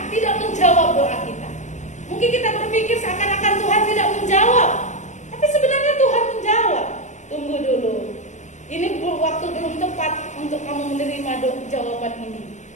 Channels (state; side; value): late; right; 0.35 ms